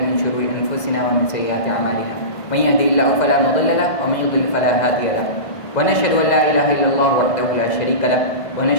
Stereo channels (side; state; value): right; late; 2.0 ms